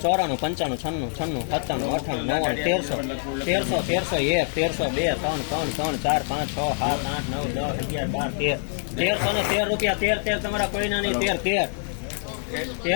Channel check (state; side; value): silent; right; digital silence